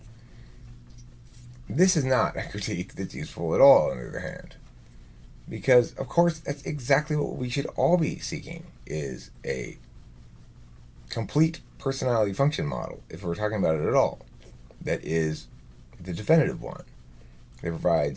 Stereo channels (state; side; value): identical; both; correlation 1.00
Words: This is not a critique that's useful at all, on the other hand. Because, of course, that's exactly what we should all be seeking, is a complete personality function model, if we're talking about it at all, that is the definitive one, that